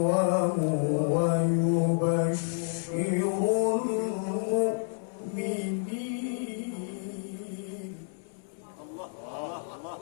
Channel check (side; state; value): right; silent; 58 dB below the other